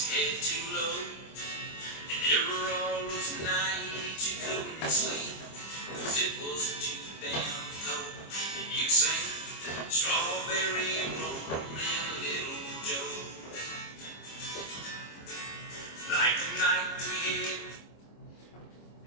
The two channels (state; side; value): late; right; 25 ms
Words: head too low. And there were all those nights you couldn't sleep, 'cause it was too damn cold. And you'd sing Strawberry Moon and Little Joe. Like the night we had.